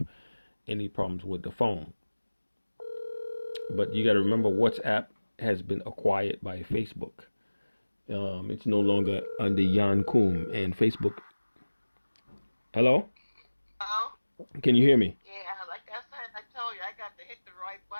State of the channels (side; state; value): both; inverted; correlation -1.00